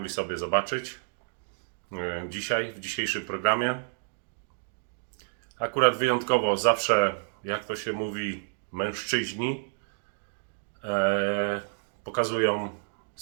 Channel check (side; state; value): left; silent; digital silence